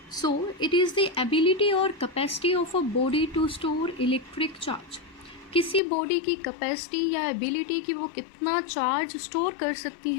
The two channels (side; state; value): right; drops out; at 5.8 s